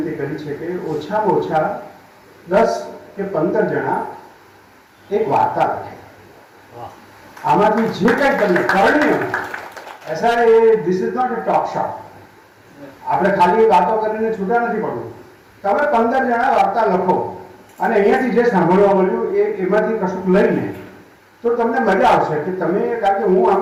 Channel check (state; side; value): identical; both; correlation 1.00